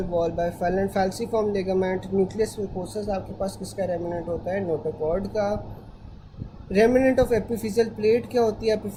wall by falciform ligament। Nucleus mucosus आपके पास किसका रेमिनेंट होता है, नोटोकॉर्ड का। रेमिनेंट ऑफ एपिफिजियल प्लेट क्या होती है,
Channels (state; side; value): identical; both; correlation 1.00